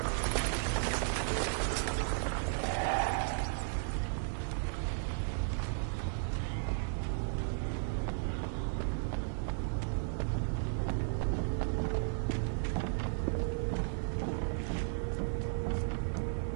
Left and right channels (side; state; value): left; silent; digital silence